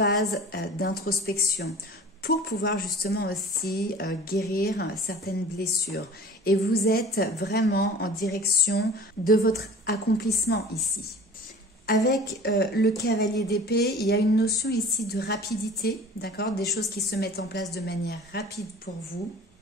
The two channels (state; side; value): normal; both; correlation 0.43